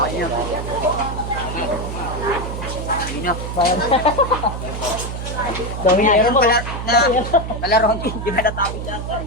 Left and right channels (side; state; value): right; noise; hum, 6 dB below the sound